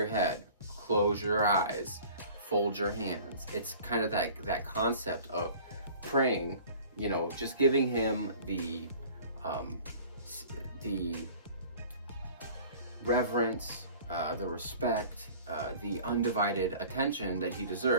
head, close your eyes, fold your hands. It's kind of that concept of praying, just giving him the reverence, the respect, the undivided attention that he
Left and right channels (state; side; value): inverted; both; correlation -0.46